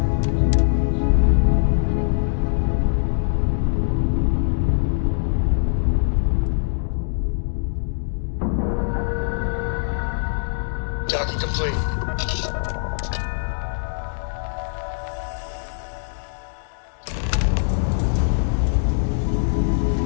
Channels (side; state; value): right; silent; digital silence